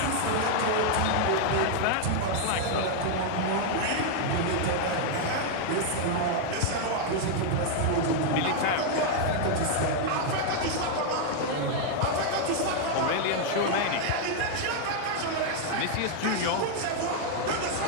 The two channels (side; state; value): both; different; correlation 0.00